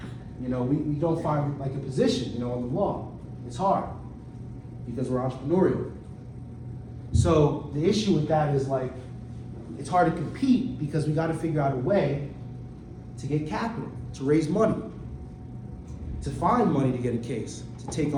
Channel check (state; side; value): identical; both; correlation 1.00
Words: we don't find like a position, in the law. It's hard because we're entrepreneurial. So the issue with that is like, it's hard to compete because we got to figure out a way to get capital, to raise money, to find money to get a case, to take